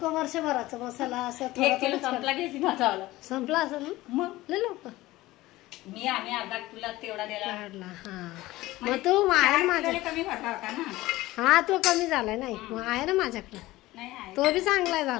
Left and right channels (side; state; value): right; quieter; 18.0 dB